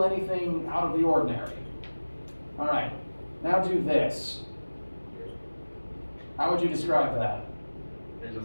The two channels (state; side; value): inverted; both; correlation -1.00